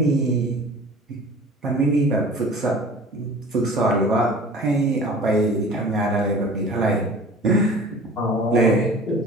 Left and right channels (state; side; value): normal; both; correlation 0.43